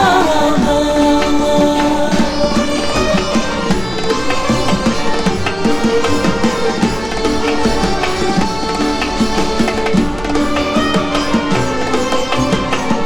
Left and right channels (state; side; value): noise; right; rumble, 17 dB below the sound